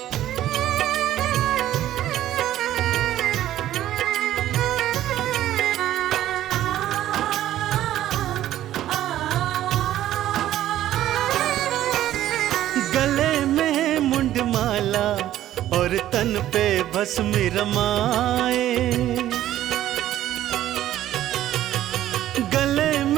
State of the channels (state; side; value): quieter; left; 13.0 dB